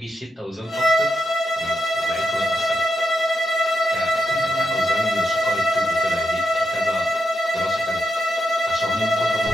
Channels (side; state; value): both; normal; correlation 0.84